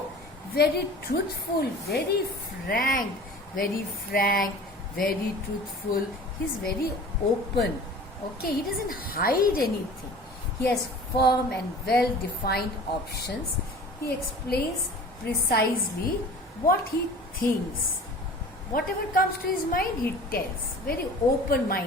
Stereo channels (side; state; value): both; normal; correlation 0.42